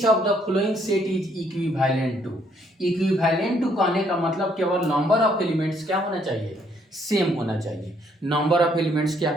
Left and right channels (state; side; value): normal; both; correlation 0.68